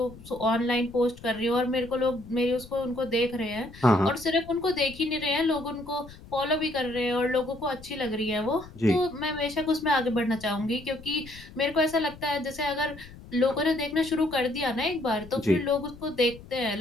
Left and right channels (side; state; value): left; noise; rumble, 18 dB below the sound